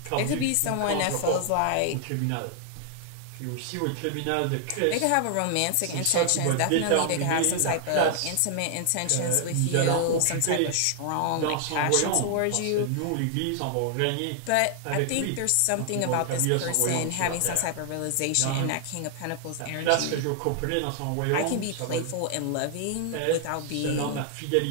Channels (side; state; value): both; different; correlation 0.00